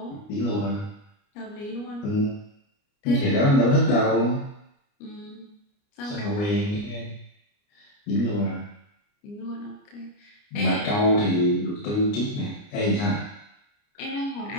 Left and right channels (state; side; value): late; right; 29 ms